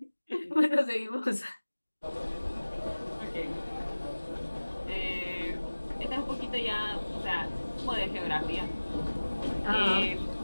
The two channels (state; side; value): inverted; both; correlation -1.00